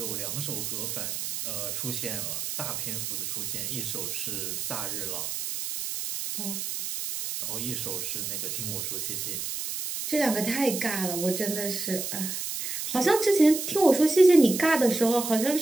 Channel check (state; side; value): noise; right; hiss, 4 dB below the sound